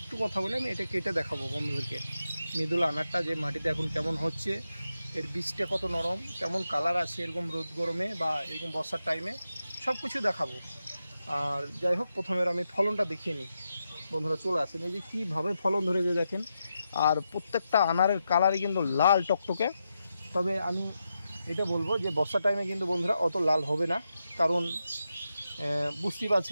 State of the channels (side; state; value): both; inverted; correlation -0.87